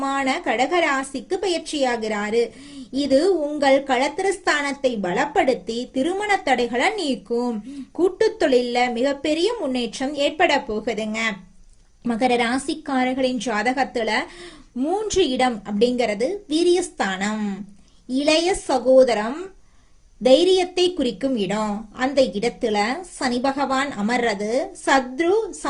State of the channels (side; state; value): both; identical; correlation 1.00